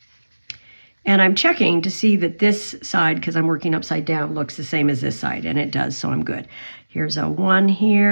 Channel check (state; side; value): inverted; both; correlation -1.00